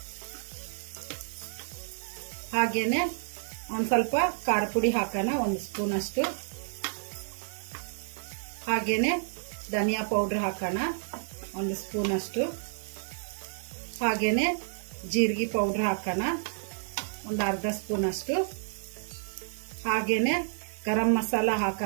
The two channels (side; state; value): left; silent; digital silence